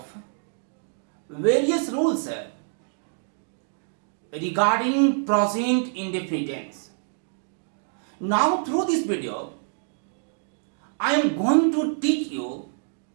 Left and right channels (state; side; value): silent; left; digital silence